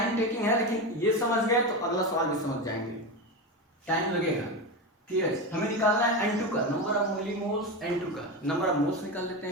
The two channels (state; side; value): normal; both; correlation 0.18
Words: टेकिंग है लेकिन ये समझ गए तो अगला सवाल भी समझ जाएंगे, टाइम लगेगा। KH हमें निकालना है N2 का, नंबर ऑफ मिलीमोल्स। N2 का नंबर ऑफ मोल्स निकाल लेते